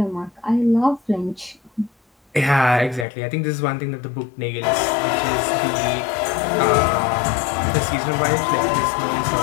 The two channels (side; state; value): right; drops out; at 3.1 s